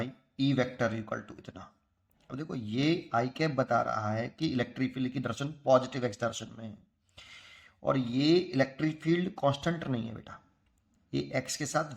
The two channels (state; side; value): identical; both; correlation 1.00